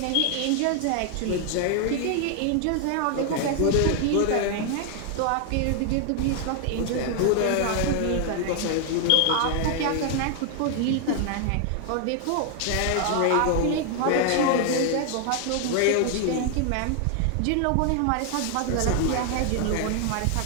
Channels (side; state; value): both; different; correlation 0.00